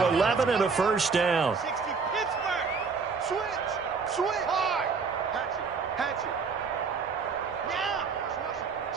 11 and a 1st down. Switch hard. Hatch it. Now.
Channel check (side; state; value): left; quieter; 5.1 dB